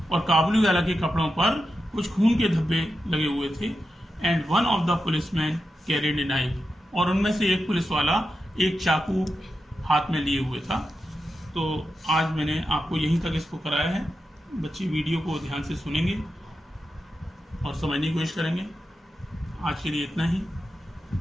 और काबुली वाला के कपड़ों पर कुछ खून के धब्बे लगे हुए थे। And one of the policeman carried a knife, और उनमें से एक पुलिस वाला एक चाकू हाथ में लिए हुए था। तो आज मैंने आपको यहीं तक इसको कराया है। बच्चे वीडियो को ध्यान से सुनेंगे और समझने की कोशिश करेंगे। आज के लिए इतना ही।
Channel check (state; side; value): normal; both; correlation 0.89